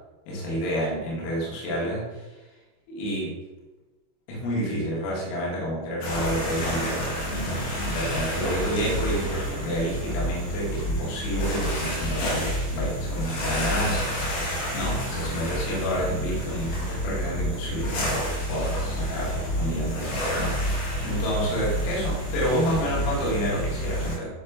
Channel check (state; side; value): late; right; 24 ms